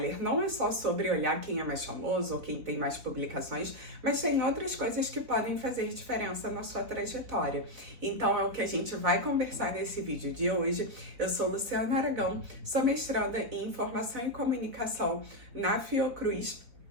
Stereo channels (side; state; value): left; late; 3.9 ms